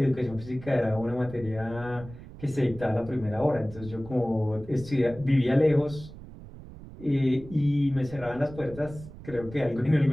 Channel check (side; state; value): right; noise; rumble, 16 dB below the sound